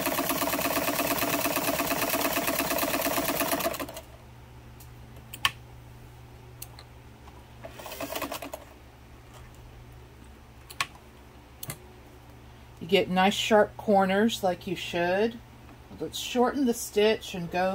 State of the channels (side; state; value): both; identical; correlation 1.00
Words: You get nice sharp corners like you should. Let's shorten the stitch and